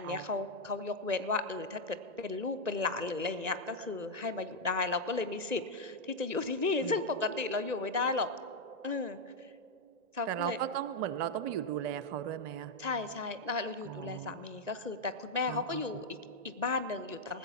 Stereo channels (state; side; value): late; left; 1.9 ms